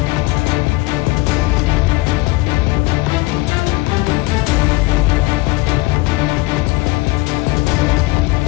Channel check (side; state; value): right; quieter; 22.1 dB